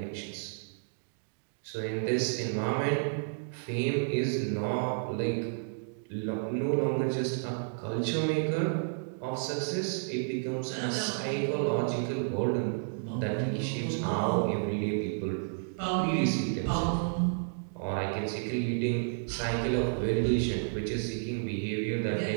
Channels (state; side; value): silent; left; digital silence